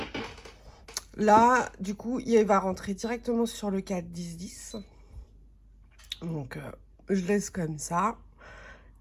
Là, du coup, il va rentrer directement sur le cadre 10-10. Donc, je laisse comme ça.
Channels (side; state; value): both; identical; correlation 1.00